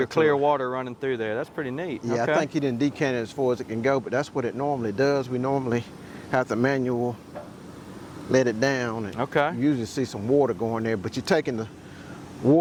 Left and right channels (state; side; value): identical; both; correlation 1.00